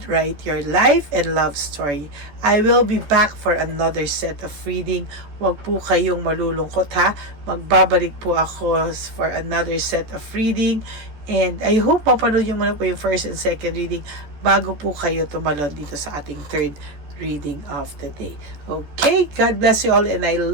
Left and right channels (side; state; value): left; late; 14 ms